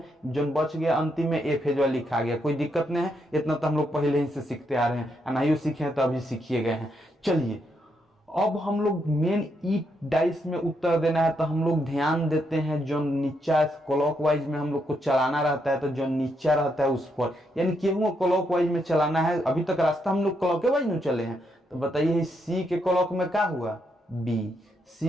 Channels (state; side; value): normal; both; correlation 0.78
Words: जो बच गया अंतिम में ए फेजवा लिखा गया, कोई दिक्कत नहीं है। इतना तो हम लोग पहले ही से सीखते आ रहे हैं, नहीं सीखे हैं तो अभी सीखिए गए हैं। चलिए अब हम लोग मेन ई डाइस में उत्तर देना है, तो हम लोग ध्यान देते हैं जो नीचा क्लॉकवाइज में हम लोग को चलाना रहता है, तो जो नीचा रहता है उस पर, यानी केहू क्लॉकवाइज में चलाना है। अभी तक रास्ता हम लोग क्लॉकवाइज में चले हैं, तो बताइए सी के क्लॉक में क्या हुआ, बी।